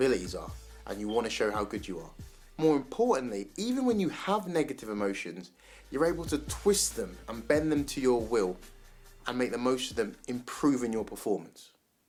are and you want to show how good you are. More importantly, even when you have negative emotions, you're able to twist them and bend them to your will and make the most of them, improving your performance.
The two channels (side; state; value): both; identical; correlation 1.00